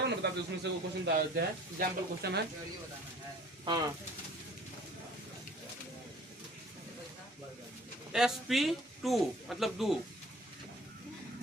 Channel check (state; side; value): normal; both; correlation 0.51